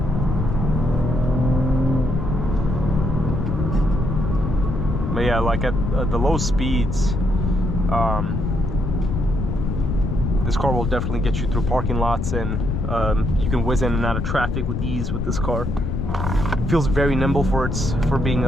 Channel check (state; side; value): noise; left; rumble, 1 dB below the sound